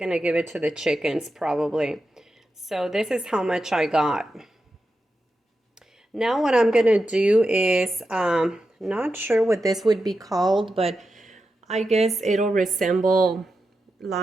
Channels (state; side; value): normal; both; correlation 0.89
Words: give it to the chickens probably. So this is how much I got. Now what I'm gonna do is, not sure what this would be called, but I guess it'll resemble